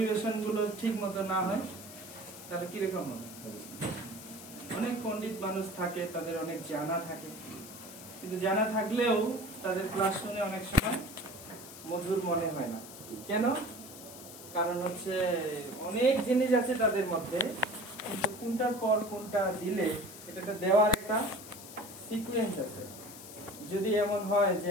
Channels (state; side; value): noise; left; hiss, 15 dB below the sound